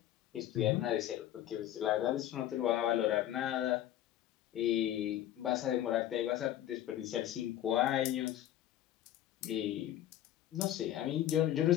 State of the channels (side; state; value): right; quieter; 12.3 dB